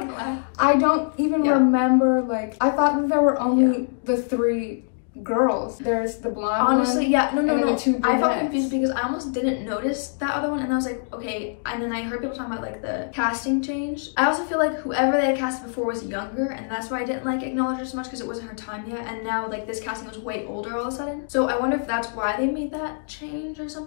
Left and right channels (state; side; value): silent; right; digital silence